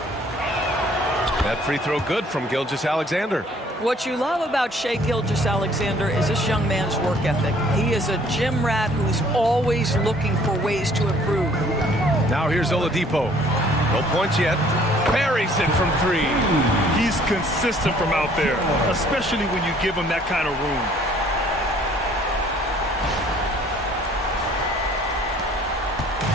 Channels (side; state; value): both; normal; correlation 0.58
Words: That free throw good from Gilgeous-Alexander. What you love about Shai Gilgeous-Alexander is this young man's work ethic. He is a gym rat who's always looking for ways to improve. Now here's Oladipo. No points yet. Buries it from 3. He's consistent from out there, especially when you give him that kind of room.